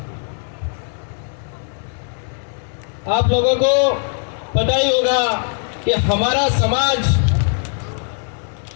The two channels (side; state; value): right; silent; digital silence